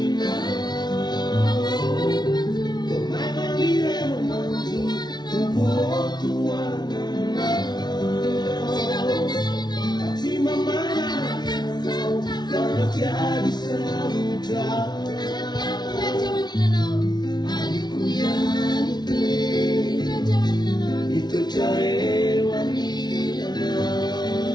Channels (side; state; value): right; late; 0.20 ms